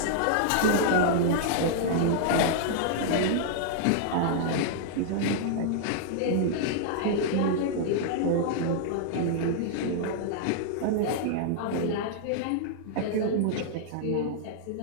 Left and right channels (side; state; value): both; different; correlation -0.01